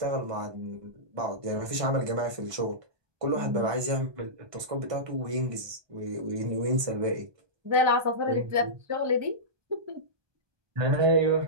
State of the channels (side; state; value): left; late; 1.2 ms